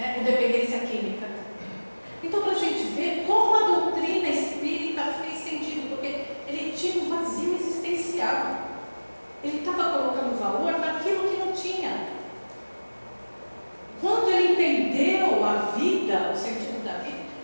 com dependência química. Então, para a gente ver como a doutrina espírita fez sentido, porque ele tinha um vazio existencial. Ele estava colocando valor naquilo que não tinha. Quando ele entendeu a vida, o sentido da vida,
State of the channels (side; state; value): both; inverted; correlation -1.00